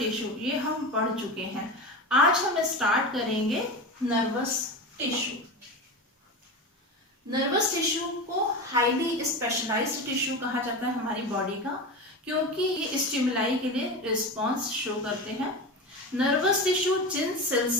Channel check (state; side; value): normal; both; correlation 0.24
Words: ये हम पढ़ चुके हैं। आज हम स्टार्ट करेंगे नर्वस टिश्यू। नर्वस टिश्यू को हाईली स्पेशलाइज्ड टिश्यू कहा जाता है हमारी बॉडी का, क्योंकि ये स्टिमुलाई के लिए रिस्पॉन्स शो करते हैं। नर्वस टिश्यू जिन सेल